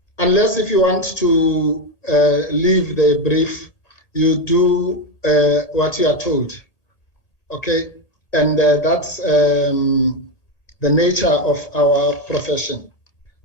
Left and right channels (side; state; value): right; late; 1.8 ms